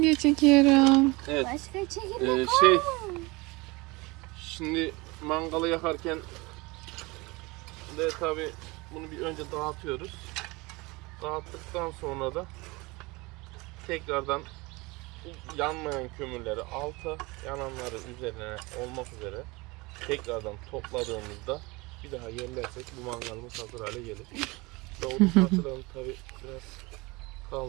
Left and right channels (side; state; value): left; quieter; 24.2 dB